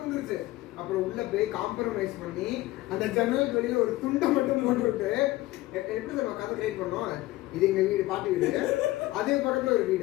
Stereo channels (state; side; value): quieter; right; 17.9 dB